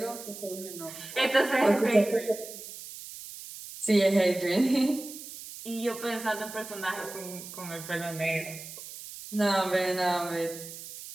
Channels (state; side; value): noise; right; hiss, 12 dB below the sound